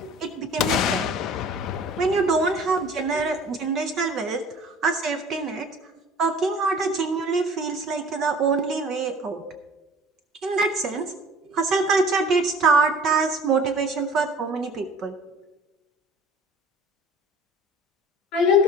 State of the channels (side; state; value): both; normal; correlation 0.46